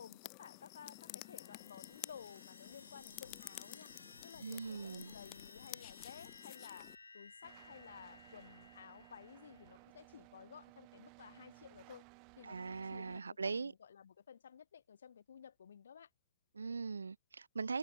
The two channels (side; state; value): both; inverted; correlation -0.76